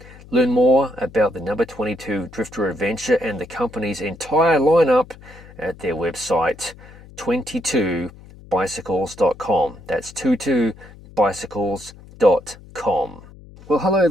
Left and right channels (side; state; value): left; noise; hum, 20 dB below the sound